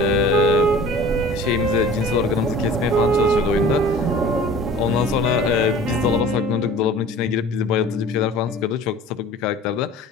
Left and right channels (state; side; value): normal; both; correlation 0.44